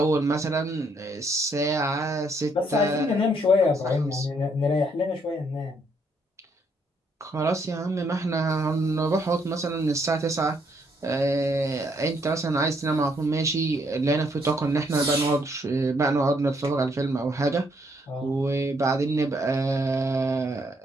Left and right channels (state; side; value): normal; both; correlation 0.71